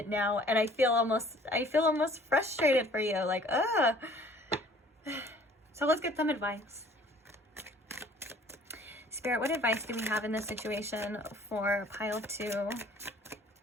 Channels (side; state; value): both; normal; correlation 0.54